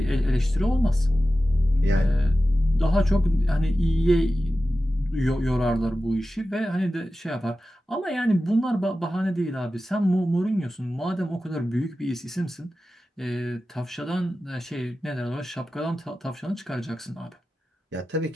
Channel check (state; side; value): normal; both; correlation 0.94